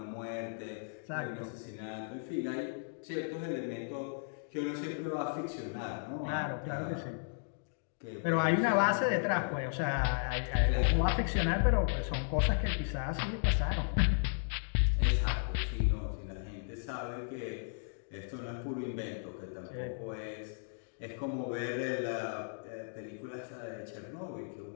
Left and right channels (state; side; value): silent; right; digital silence